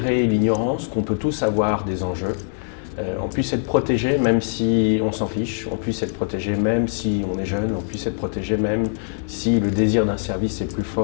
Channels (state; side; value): silent; right; digital silence